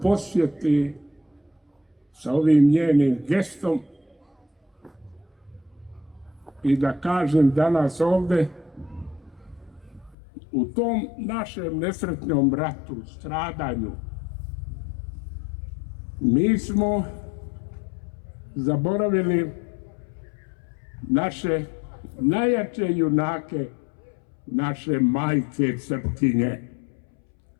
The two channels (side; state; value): right; drops out; at 10.2 s